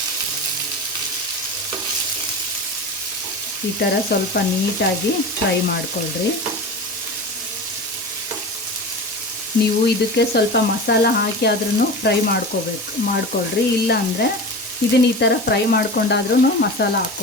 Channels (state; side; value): normal; both; correlation 0.30